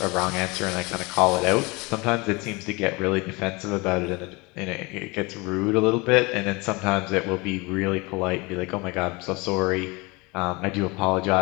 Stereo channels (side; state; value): right; quieter; 25.9 dB